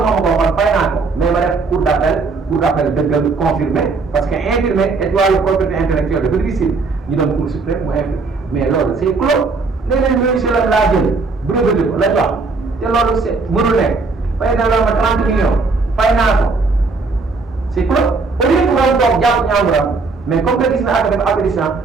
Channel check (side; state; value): left; quieter; 4.1 dB